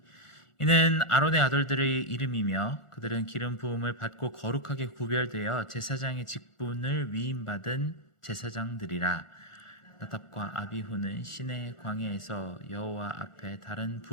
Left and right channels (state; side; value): late; right; 1.4 ms